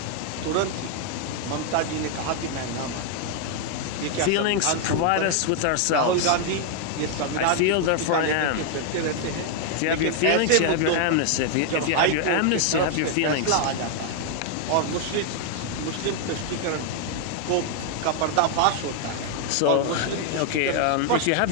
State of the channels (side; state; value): both; different; correlation 0.00